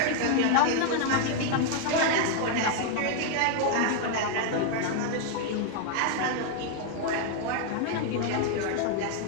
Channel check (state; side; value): different; both; correlation 0.00